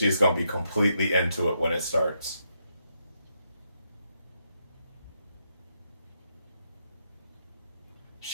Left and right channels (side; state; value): both; inverted; correlation -0.80